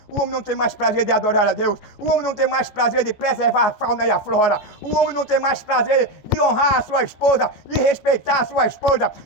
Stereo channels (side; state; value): right; late; 14 ms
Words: O homem não tem mais prazer de adorar a Deus. O homem não tem mais prazer de preservar a fauna e a flora. O homem não tem mais prazer de honrar a sua esposa, de respeitar a sua esposa,